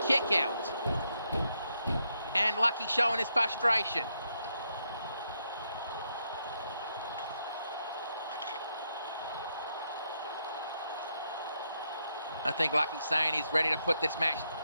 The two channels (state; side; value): inverted; both; correlation -0.79